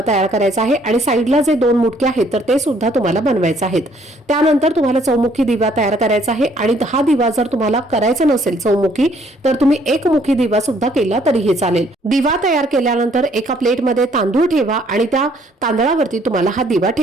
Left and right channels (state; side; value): normal; both; correlation 0.64